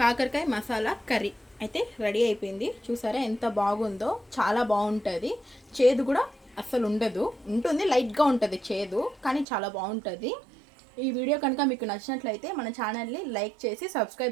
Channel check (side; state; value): left; drops out; at 9.5 s